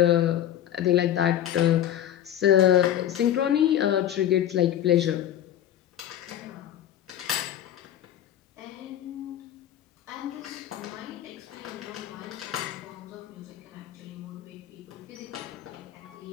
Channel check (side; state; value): right; quieter; 11.3 dB